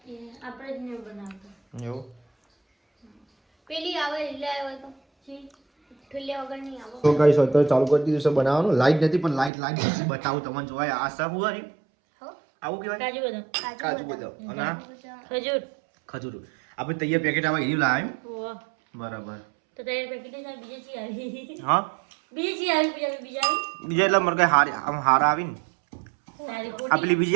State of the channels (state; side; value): drops out; left; at 9.5 s